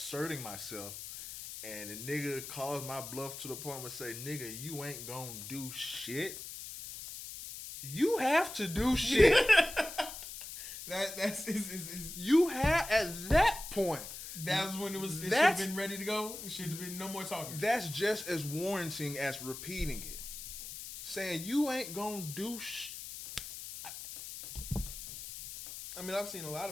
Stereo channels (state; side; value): noise; left; hiss, 10 dB below the sound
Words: myself, and the nigga calls my bluff to the point where say, "Nigga, you ain't gonna do shit." You have to do shit. That's you have at that point. That's when it should have been ready to go. It should have been no more talking. That's just as warranting as repeating it. Saying you ain't gonna do I mean, I've seen a lot